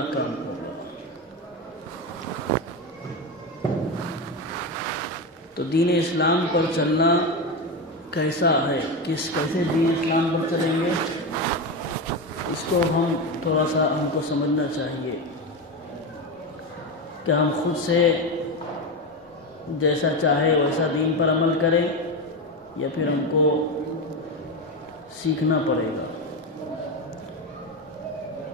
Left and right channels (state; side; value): normal; both; correlation 0.16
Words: ہوگا. تو دین اسلام پر چلنا کیسا ہے، کیسے دین اسلام پر چلیں گے، اس کو ہم تھوڑا سا ہم کو سمجھنا چاہیے کہ ہم خود سے جیسا چاہے ویسا دین پر عمل کریں یا پھر ہم کو سیکھنا پڑے گا.